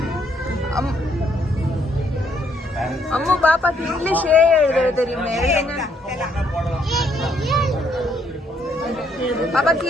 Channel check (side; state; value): both; normal; correlation 0.70